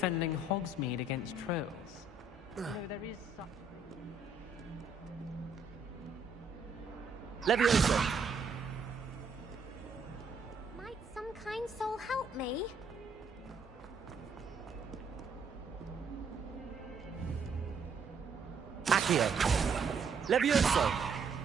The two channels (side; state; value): left; quieter; 3.9 dB